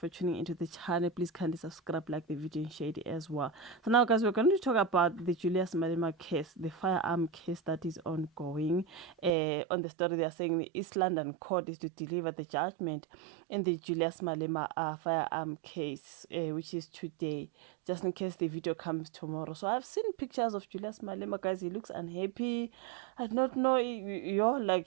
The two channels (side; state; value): left; drops out; at 9.3 s